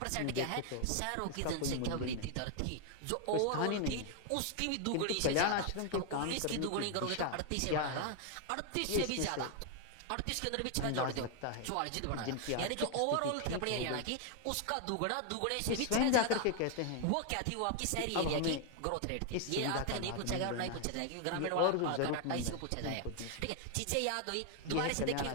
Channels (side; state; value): both; different; correlation 0.00